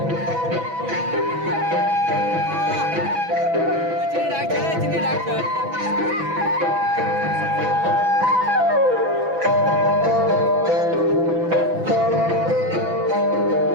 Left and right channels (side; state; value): left; late; 6.0 ms